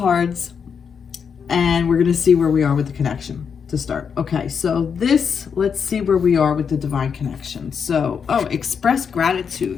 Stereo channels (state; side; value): quieter; right; 6.6 dB